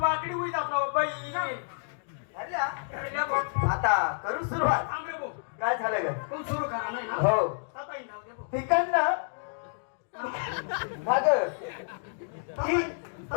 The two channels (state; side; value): silent; right; digital silence